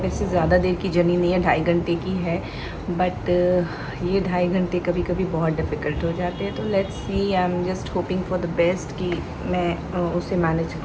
वैसे ज़्यादा देर की जर्नी नहीं है, 2.5 घंटे की है, बट ये 2.5 घंटे कभी कभी बहुत डिफ़िकल्ट हो जाते हैं। तो let's see, I am just hoping for the best कि मैं उसे मैनेज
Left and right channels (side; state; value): both; identical; correlation 1.00